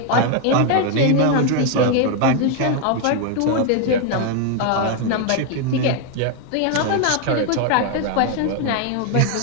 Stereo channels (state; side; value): different; both; correlation 0.01